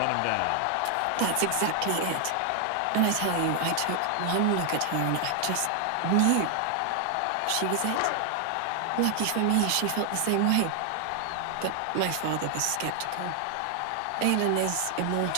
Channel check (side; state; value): both; different; correlation 0.00